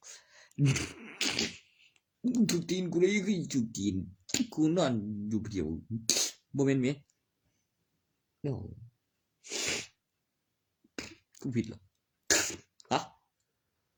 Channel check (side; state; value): both; identical; correlation 1.00